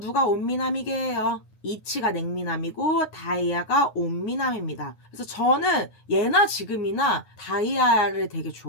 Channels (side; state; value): right; late; 9.4 ms